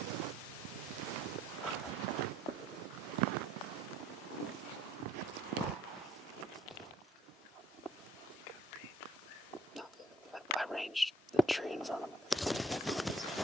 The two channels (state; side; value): normal; both; correlation 0.63